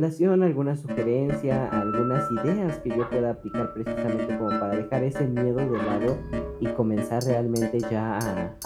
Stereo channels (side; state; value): both; identical; correlation 1.00